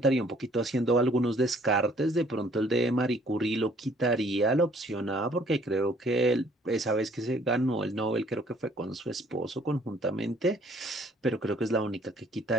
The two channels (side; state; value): both; normal; correlation 0.60